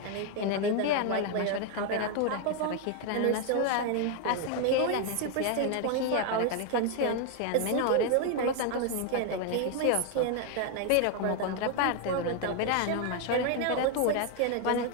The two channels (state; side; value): different; both; correlation 0.01